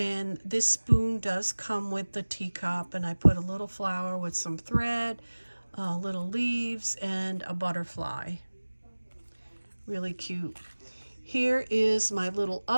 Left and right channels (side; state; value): both; inverted; correlation -1.00